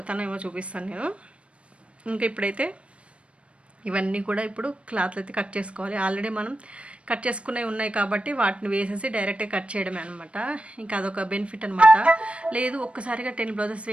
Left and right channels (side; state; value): left; late; 0.061 ms